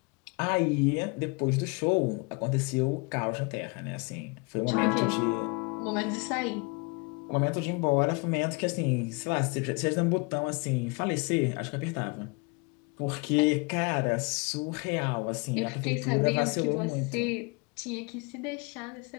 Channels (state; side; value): quieter; right; 29.6 dB